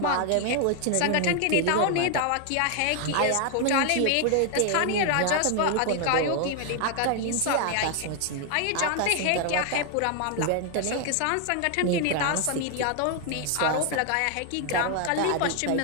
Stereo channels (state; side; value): different; both; correlation 0.00